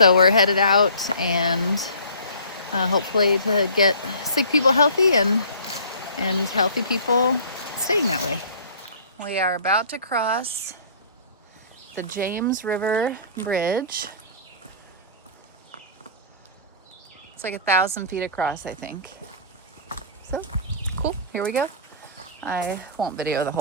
we're headed out and hopefully to get sick people healthy and healthy people staying that way. We are about to cross the James River Bridge. It's like 1,000 feet across, I think. So, cool, here we go. I won't video the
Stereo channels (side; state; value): both; inverted; correlation -0.46